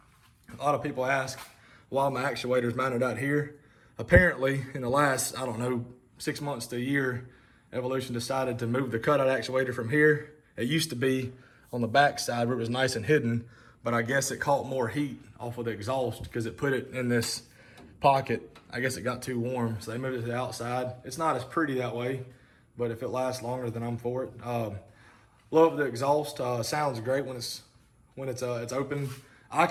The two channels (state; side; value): identical; both; correlation 1.00